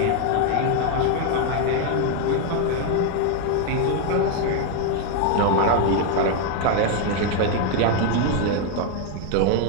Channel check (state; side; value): different; both; correlation 0.01